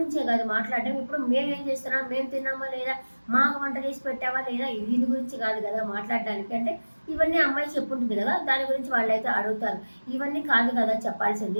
కాదు మాట్లాడడం, ఇప్పుడు మేము ఏం చేస్తున్నాం, మేము తిన్నామా లేదా, మాకు వంట చేసి పెట్టావా లేదా, దీని గురించి కాదు కదా మాట్లాడడానికి అంటే ఇవన్నీ అమ్మాయి చెప్పుంటుంది కదా, దాని గురించి వాళ్ళైతే అడుగుతారు. ఇవన్నీ కాదు కదా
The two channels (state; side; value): inverted; both; correlation -1.00